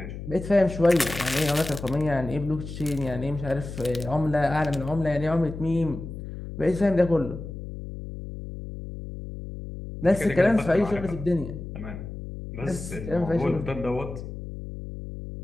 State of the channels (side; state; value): left; noise; hum, 9 dB below the sound